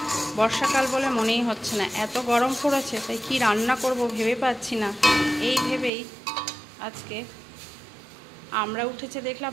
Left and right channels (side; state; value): left; drops out; at 5.9 s